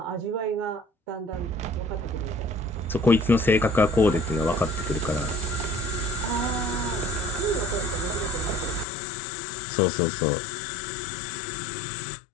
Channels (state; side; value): drops out; right; at 8.8 s